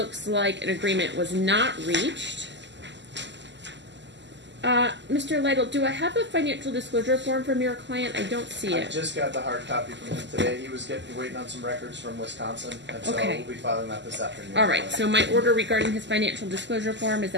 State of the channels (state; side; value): late; left; 0.52 ms